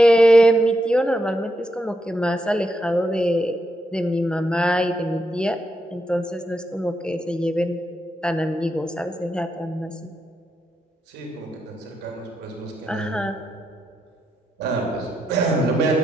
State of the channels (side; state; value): both; normal; correlation 0.82